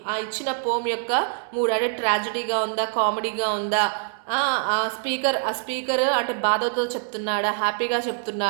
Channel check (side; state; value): left; silent; digital silence